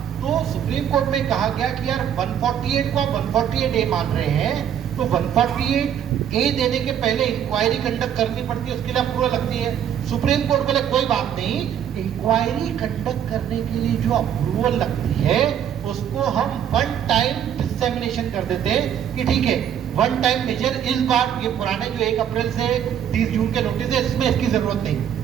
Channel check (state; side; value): quieter; left; 9.3 dB